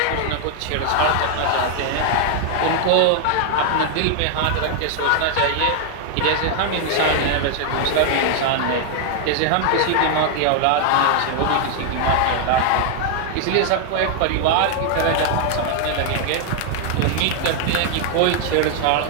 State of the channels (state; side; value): different; both; correlation 0.00